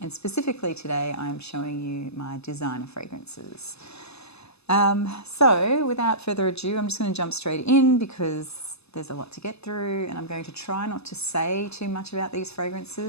specifically today I am showing you my designer fragrances. So without further ado, I'm just going to jump straight in because there's a lot to get through, and I'm going to try not to say too much about these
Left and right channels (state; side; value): late; right; 0.79 ms